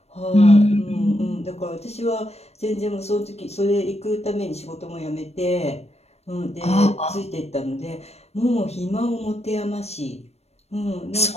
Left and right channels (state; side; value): late; right; 0.31 ms